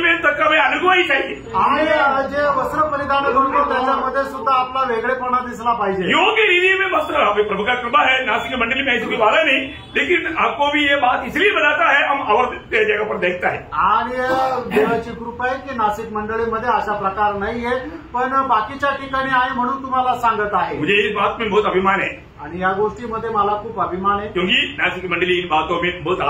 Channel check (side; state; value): both; identical; correlation 1.00